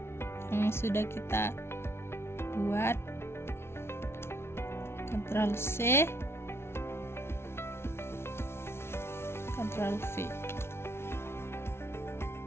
sudah kita buat. Ctrl C, Ctrl V.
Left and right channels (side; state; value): right; late; 0.12 ms